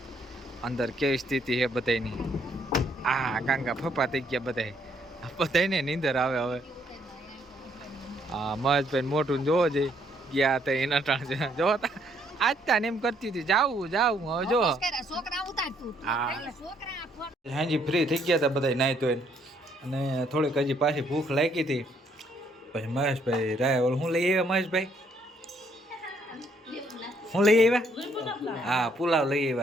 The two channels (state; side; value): normal; both; correlation 0.69